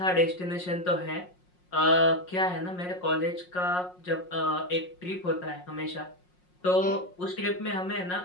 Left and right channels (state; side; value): late; right; 5.5 ms